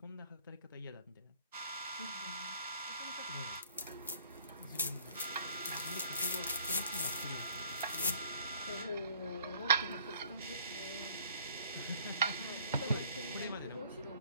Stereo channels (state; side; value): inverted; both; correlation -0.58